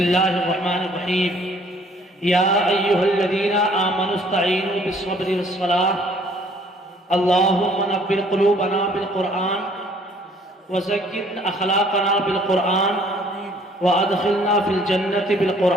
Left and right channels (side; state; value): both; normal; correlation 0.59